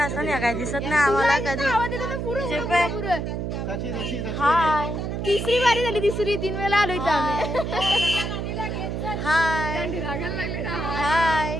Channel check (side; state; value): right; noise; hum, 3 dB below the sound